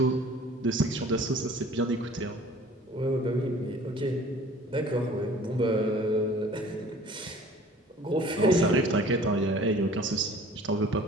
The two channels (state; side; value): normal; both; correlation 0.49